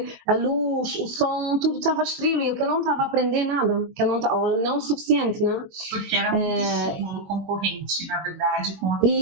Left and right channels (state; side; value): late; left; 21 ms